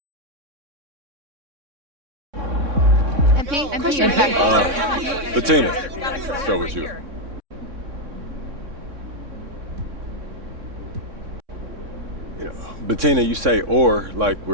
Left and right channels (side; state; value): left; late; 3.6 ms